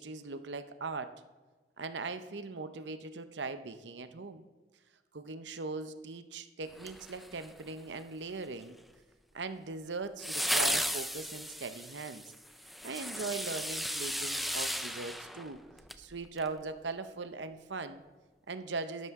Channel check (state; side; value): normal; both; correlation 0.41